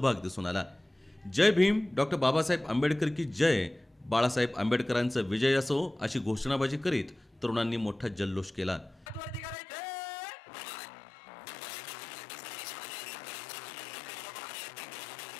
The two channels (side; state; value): right; drops out; at 9.6 s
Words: दिसून आला। जय भीम, डॉक्टर बाबासाहेब आंबेडकर की जय, बाळासाहेब आंबेडकरांचा विजय असो अशी घोषणाबाजी करीत तरुणांनी मोठा जल्लोष केला।